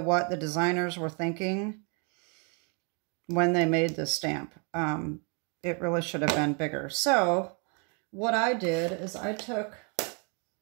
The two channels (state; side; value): quieter; left; 35.8 dB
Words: the designers were thinking when they made this stamp. It really should have been bigger. So what I did is I took